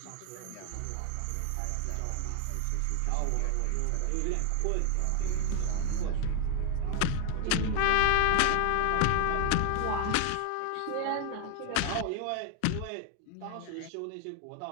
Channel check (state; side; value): different; both; correlation 0.00